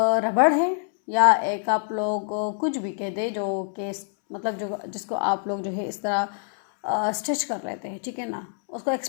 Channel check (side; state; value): right; silent; 61 dB below the other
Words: रबड़ है, या एक आप लोग कुछ भी कह दे जो कि मतलब जो जिसको आप लोग जो है इस तरह स्ट्रेच कर लेते हैं, ठीक है ना, उसको